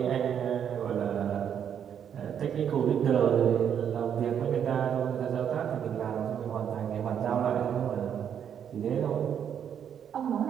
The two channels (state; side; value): quieter; left; 8.6 dB